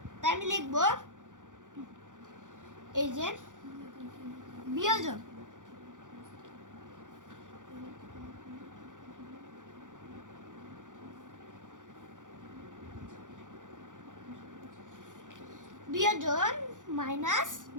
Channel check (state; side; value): late; left; 0.87 ms